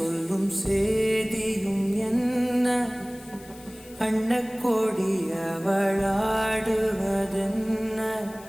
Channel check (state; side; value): noise; left; hiss, 22 dB below the sound